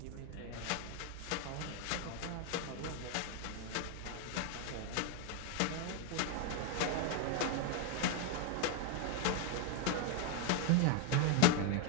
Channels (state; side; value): different; both; correlation 0.01